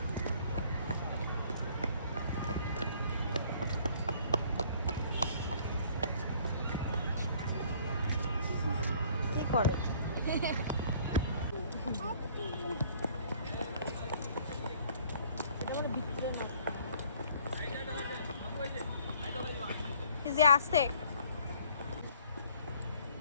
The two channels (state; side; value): inverted; both; correlation -0.57